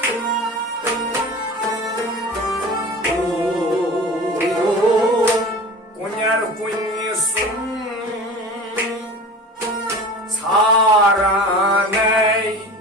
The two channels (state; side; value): normal; both; correlation 0.36